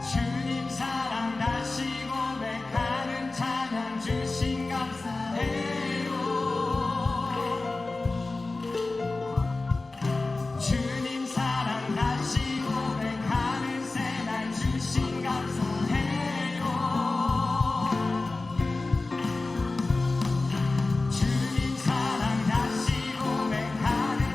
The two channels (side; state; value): right; quieter; 3.4 dB